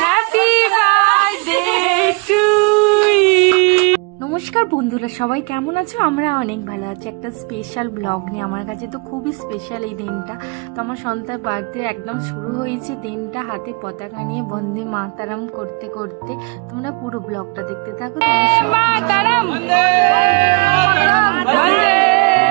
Happy birthday to you. নমস্কার বন্ধুরা, সবাই কেমন আছো? আমরা অনেক ভালো আছি। একটা স্পেশাল ব্লগ নিয়ে, আমার কাছে তো খুবই স্পেশাল এই দিনটা। তো আমার সন্তার বার্থডে একদম শুরু হয়েছে দিনটা হাতে পতাকা নিয়ে বন্দে মাতারাম করতে করতে। তোমরা পুরো ব্লগটা দেখতে থাকো। মাতারাম বন্দে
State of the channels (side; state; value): left; quieter; 32.5 dB